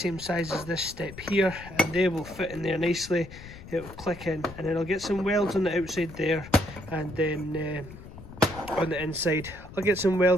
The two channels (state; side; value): noise; left; rumble, 15 dB below the sound